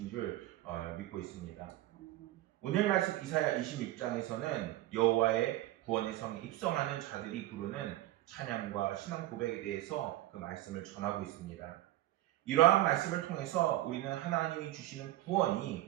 줄 믿고 있습니다. 오늘 말씀 이사야 26장에서는 여호와의 구원의 성에 입성하는 자들이 부르는 찬양과 신앙 고백에 대해서 그 말씀을 전하고 있습니다. 이러한 말씀을 통해서 우리는 하나님이 주시는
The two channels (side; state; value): left; quieter; 15.8 dB